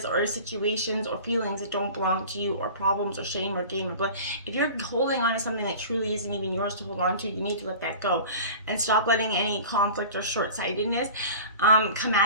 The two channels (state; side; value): inverted; both; correlation -0.39